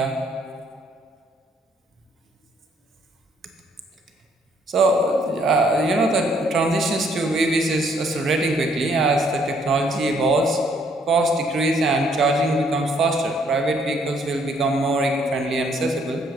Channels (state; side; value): normal; both; correlation 0.67